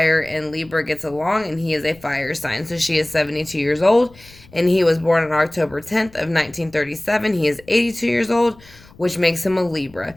and Libra gets along, and he is a fire sign. So she is 72 years old, and he was born on October 10th of 1937. He is 82 years old, which makes him a Libra.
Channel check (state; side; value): noise; left; rumble, 25 dB below the sound